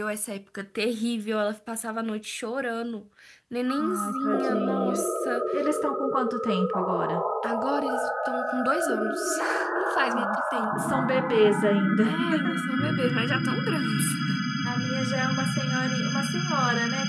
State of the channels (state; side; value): identical; both; correlation 1.00